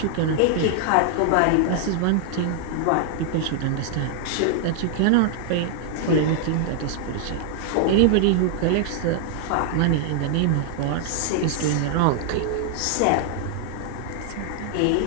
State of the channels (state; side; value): different; both; correlation 0.00